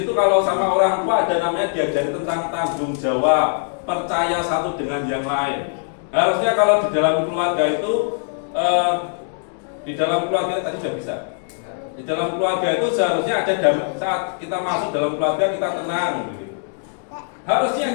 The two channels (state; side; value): silent; right; digital silence